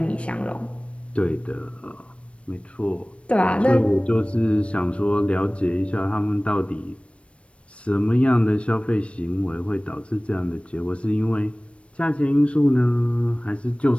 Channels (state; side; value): late; right; 0.061 ms